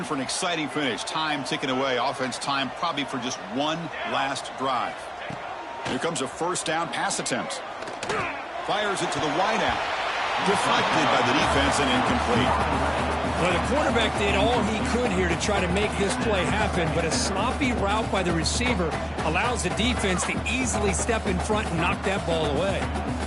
for an exciting finish. Time ticking away. Offense time probably for just one last drive. Here comes a first down pass attempt. Fires it to the wideout. Deflected by the defense and incomplete. Well, the quarterback did all he could here to try to make this play happen, but a sloppy route by the receiver allows the defense to easily step in front and knock that ball away.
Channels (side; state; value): both; identical; correlation 1.00